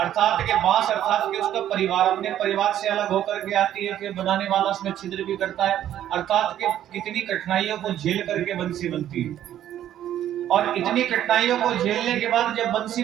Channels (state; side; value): quieter; left; 11.5 dB